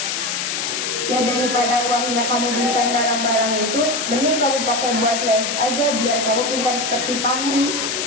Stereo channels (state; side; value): noise; left; hiss, 2 dB below the sound